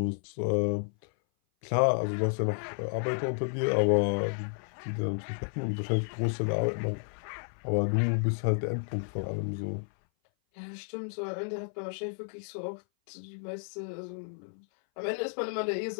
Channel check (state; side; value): silent; right; 57 dB below the other